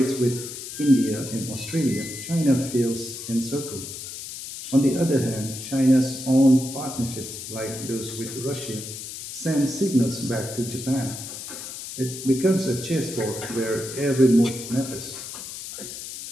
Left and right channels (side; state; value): left; noise; hiss, 9 dB below the sound